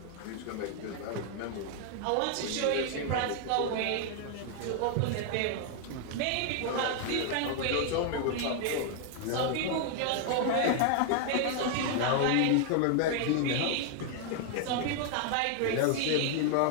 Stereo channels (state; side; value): different; both; correlation 0.00